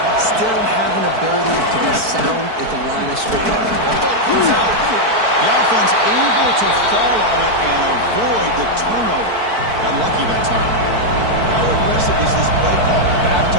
still have an ability to be sound at the line of scrimmage. The offense able to fall on it and avoid the turnover. Got lucky that time. How aggressive is this play call? Backed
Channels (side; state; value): left; late; 4.5 ms